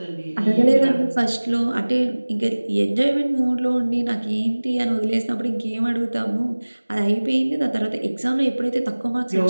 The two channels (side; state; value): both; inverted; correlation -1.00